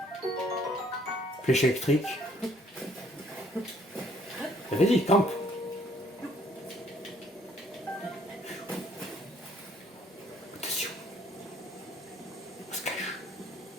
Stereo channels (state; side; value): normal; both; correlation 0.63